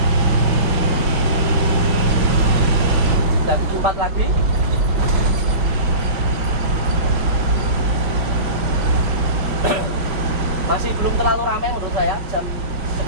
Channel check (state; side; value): late; left; 5.4 ms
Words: Dan 4 lagi. Masih belum terlalu ramai menurut saya, jam